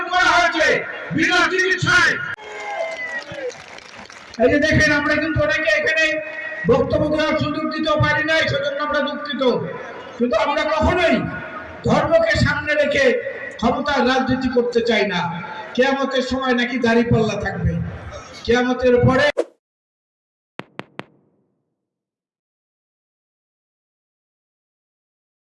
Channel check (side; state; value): both; identical; correlation 1.00